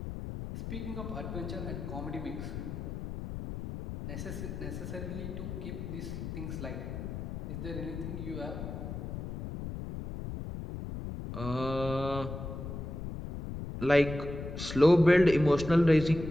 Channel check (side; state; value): left; noise; rumble, 7 dB below the sound